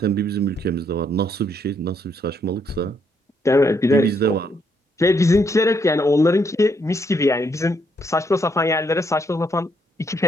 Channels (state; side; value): normal; both; correlation 0.73